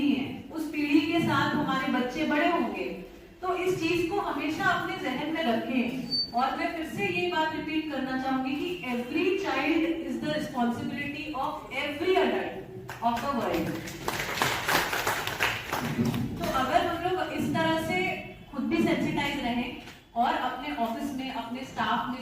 है। उस पीढ़ी के साथ हमारे बच्चे बड़े होंगे। तो इस चीज को हमेशा अपने जहन में रखें। और मैं फिर से ये बात रिपीट करना चाहूंगी कि every child is the responsibility of every adult of the world. तो अगर हम लोग इस तरह से खुद भी सेंसिटाइज रहें और अपने ऑफिस में, अपने स्टाफ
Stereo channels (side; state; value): both; identical; correlation 1.00